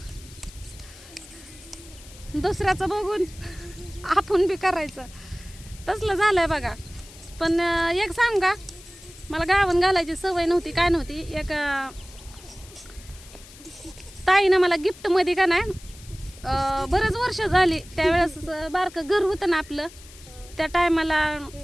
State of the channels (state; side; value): noise; left; hiss, 20 dB below the sound